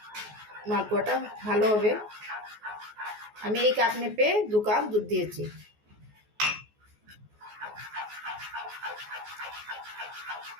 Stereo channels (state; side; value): late; left; 14 ms